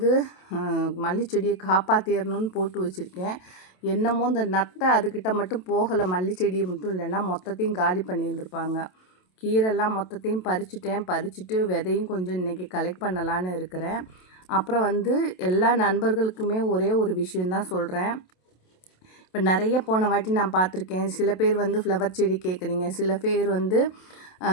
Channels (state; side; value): late; right; 27 ms